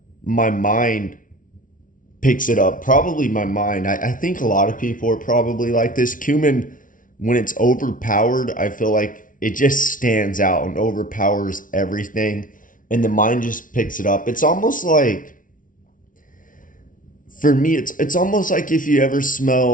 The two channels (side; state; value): right; late; 0.38 ms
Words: my mind picks it up. Probably my mind. I think a lot of people are probably like this. Cumin, when it's overpowered, I feel like it just stands out and overpowers everything. And the mind just picks it up. It's almost like, for me, it's almost like if you ever